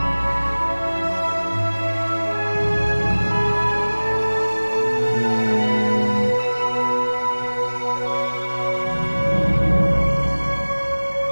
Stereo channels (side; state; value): both; inverted; correlation -1.00